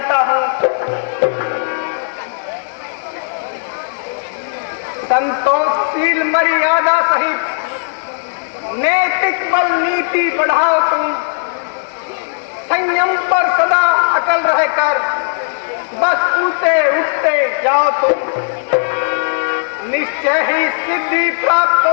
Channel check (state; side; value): silent; right; 69 dB below the other